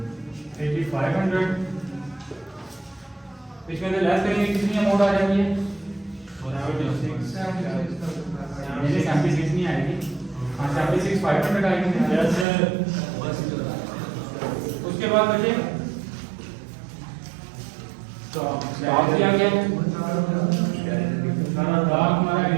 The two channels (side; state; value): left; drops out; at 12.5 s